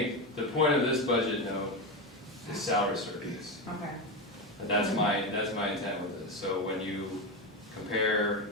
the point of this budget note is salary surveys. Okay. And that's my intent with this. So when you compare,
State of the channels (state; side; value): normal; both; correlation 0.14